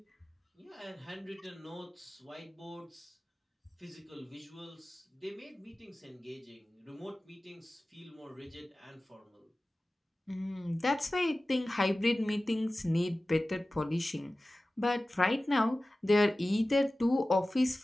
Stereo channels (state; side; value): normal; both; correlation 0.96